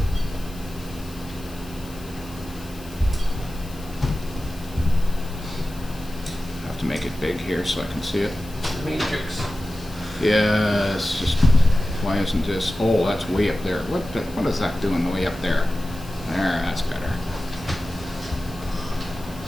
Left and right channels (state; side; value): noise; left; hiss, 20 dB below the sound